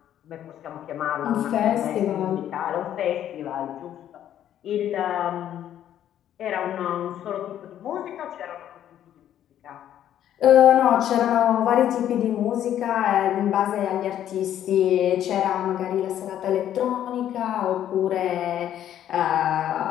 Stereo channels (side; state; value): right; quieter; 11.0 dB